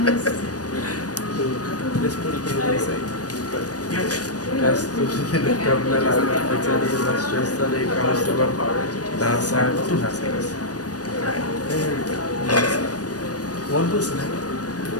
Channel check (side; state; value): right; late; 0.68 ms